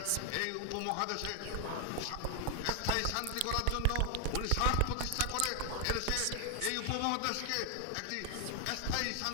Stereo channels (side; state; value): both; different; correlation 0.00